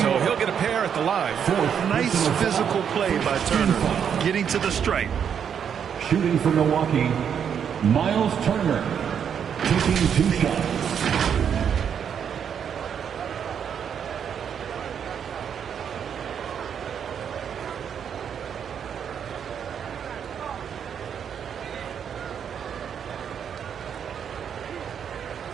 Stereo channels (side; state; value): left; quieter; 7.9 dB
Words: So he'll get a pair at the line. Nice physical play by Turner, getting to the stripe. Shooting for Milwaukee, Miles Turner, taking 2 shots.